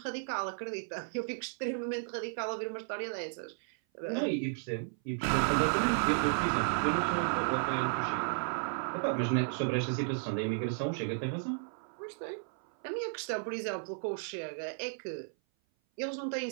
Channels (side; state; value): left; silent; 55 dB below the other